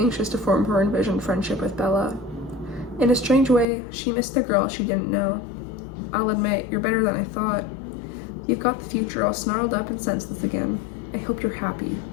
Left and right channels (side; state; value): right; drops out; at 3.7 s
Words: to form her envisioned friendship with Bella. In a strange way, she missed the girl she didn't know. I'll admit, you're better than I thought. You've got the future all snarled up and senseless again. I hope you're happy.